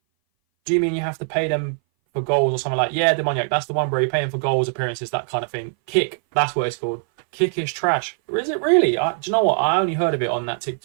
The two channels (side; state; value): left; silent; 59 dB below the other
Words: Do you mean you have to pay them for goals or something like? Yeah, Demoniac. That's the one where you're paying for goals, appearances, that kind of thing. Kick. That's what it's called. Kick is trash. Or is it really? Do you know what? I only heard of it on that